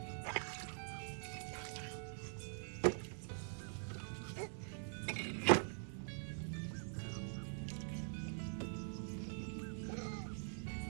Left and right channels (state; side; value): silent; left; digital silence